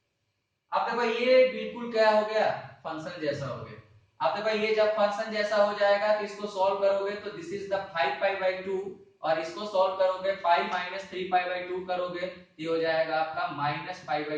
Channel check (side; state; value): both; identical; correlation 1.00